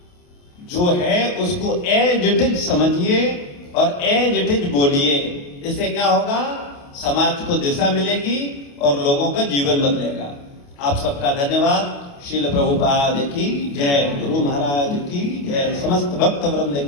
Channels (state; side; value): late; right; 28 ms